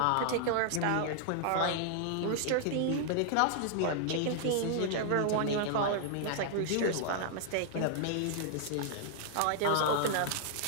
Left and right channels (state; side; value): different; both; correlation -0.01